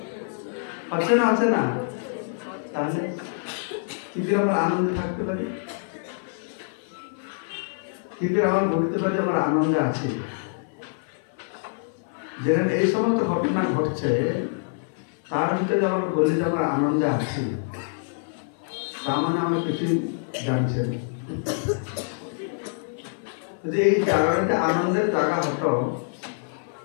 হচ্ছে না? আছে না? তাহলে কি করে আমরা আনন্দে থাকতে পারি? কি করে আমরা বলতে পারি আমরা আনন্দে আছি? যেখানে এই সমস্ত ঘটনা ঘটছে তার ভিতরে আমরা বলি যে আমরা আনন্দে আছি, তার মানে আমরা কিছুই জানছি না। যদি এই জায়গাটা আনন্দের জায়গা হতো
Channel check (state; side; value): silent; right; 57 dB below the other